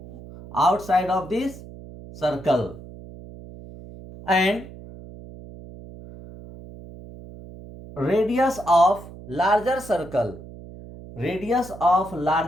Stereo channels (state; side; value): noise; right; hum, 16 dB below the sound